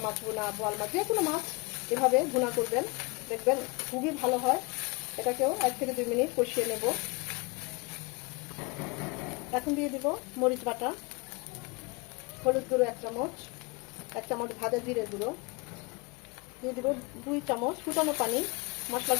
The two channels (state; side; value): quieter; right; 28.5 dB